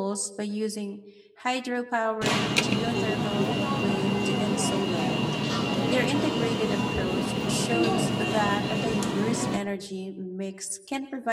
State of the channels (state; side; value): identical; both; correlation 1.00